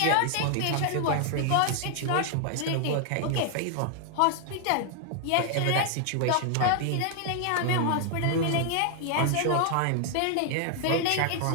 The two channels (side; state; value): both; different; correlation 0.00